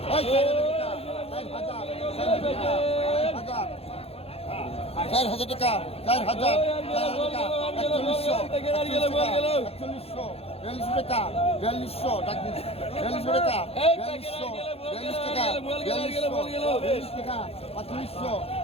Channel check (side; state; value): right; late; 0.29 ms